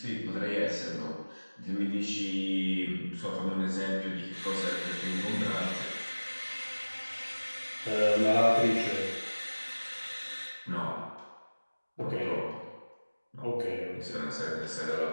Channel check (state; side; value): inverted; both; correlation -1.00